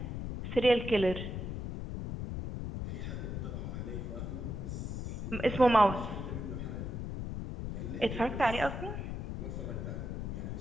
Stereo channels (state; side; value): noise; left; rumble, 4 dB below the sound